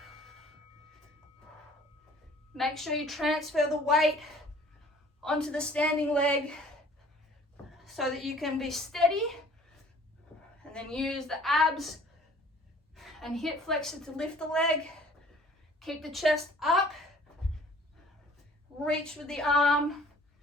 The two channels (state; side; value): normal; both; correlation 0.53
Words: Make sure you transfer the weight onto the standing leg so that you can be steady, and then use the abs and hip flexor to lift the leg. Keep the chest up, reach with the arm,